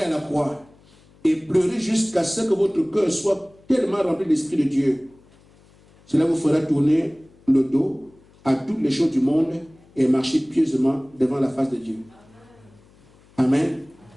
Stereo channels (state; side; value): noise; left; hum, 28 dB below the sound